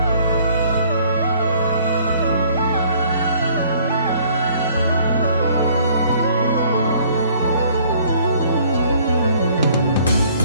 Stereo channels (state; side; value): inverted; both; correlation -0.58